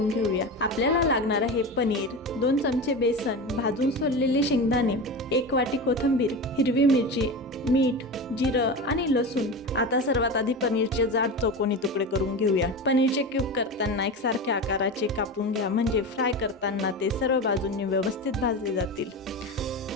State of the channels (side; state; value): both; normal; correlation 0.25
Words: घेऊया। आपल्याला लागणार आहे पनीर, 2 चमचे बेसन, भाजून सोललेले शेंगदाणे, 1 वाटी कोथिंबीर, हिरवी मिरची, मीठ, जिरं आणि लसूण। आता सर्वात आधी पनीरचे जाड चौकोनी तुकडे करून घेऊया। पनीरचे क्यूब करताना एकसारख्या आकाराचे कापून घ्या, म्हणजे फ्राय करताना ते सर्व बाजूंनी व्यवस्थित भाजले जातील।